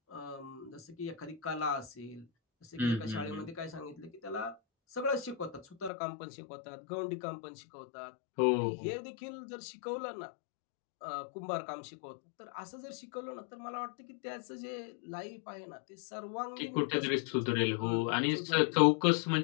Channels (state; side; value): drops out; right; at 5.9 s